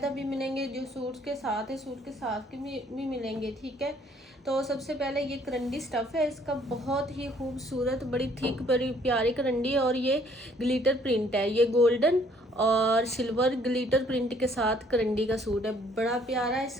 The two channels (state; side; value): normal; both; correlation 0.62